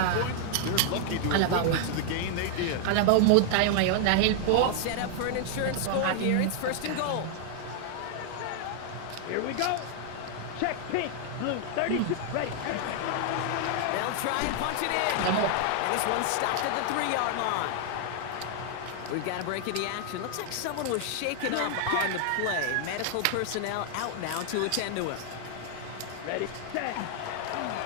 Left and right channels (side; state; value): both; different; correlation 0.00